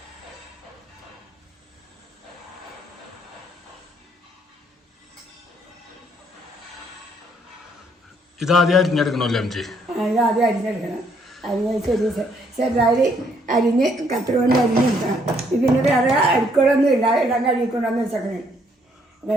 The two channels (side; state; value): both; normal; correlation 0.68